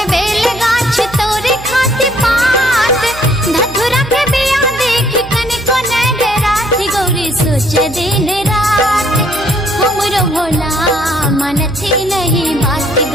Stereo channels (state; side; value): noise; right; hum, 15 dB below the sound